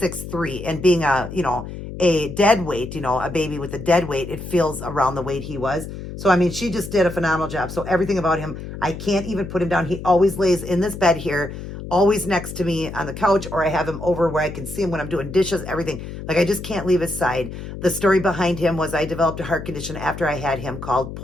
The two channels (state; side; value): noise; left; hum, 10 dB below the sound